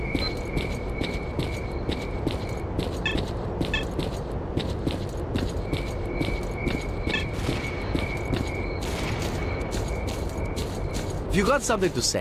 If you got something to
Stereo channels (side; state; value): both; identical; correlation 1.00